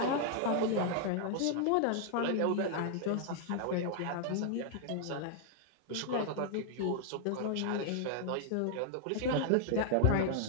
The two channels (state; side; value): different; both; correlation 0.00